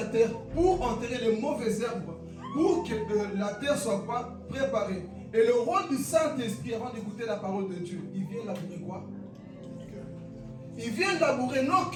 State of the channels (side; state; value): both; identical; correlation 1.00